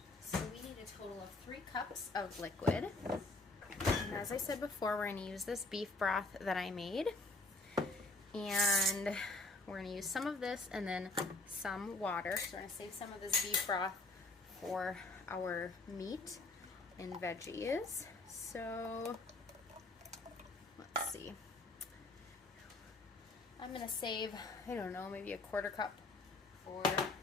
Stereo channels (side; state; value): right; quieter; 3.1 dB